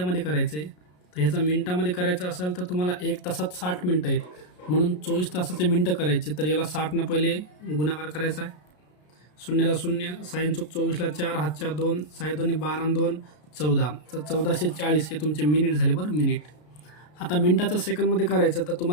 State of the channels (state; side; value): late; right; 33 ms